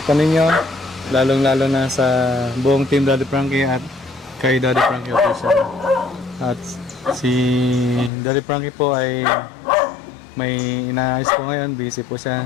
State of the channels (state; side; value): drops out; right; at 8.1 s